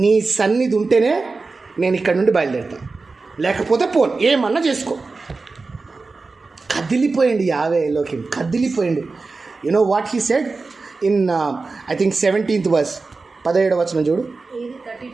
నీ సన్నిధి ఉంటేనే నేను ఇక్కడ నుండి బయలుదేరుతాను, లేకపోతే పోను, ఏమన్నా చేసుకో. కదిలిపోయింది యావేలోకి, కదిలిపోయింది. You know what he said in I think 17th verse, 17వ వచనం చూడు,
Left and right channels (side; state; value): left; quieter; 3.9 dB